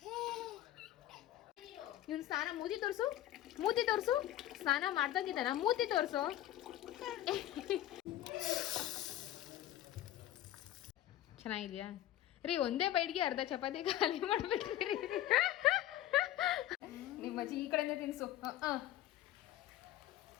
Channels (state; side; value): quieter; right; 13.4 dB